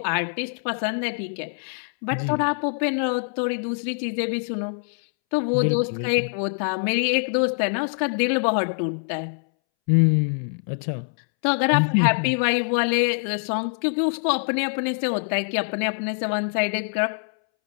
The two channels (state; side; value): silent; right; 62 dB below the other